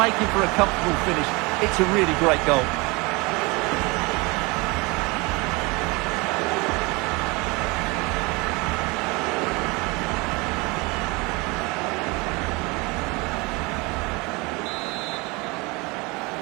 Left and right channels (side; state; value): left; quieter; 26.0 dB